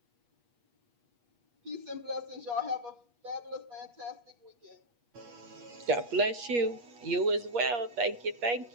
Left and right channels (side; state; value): left; late; 8.4 ms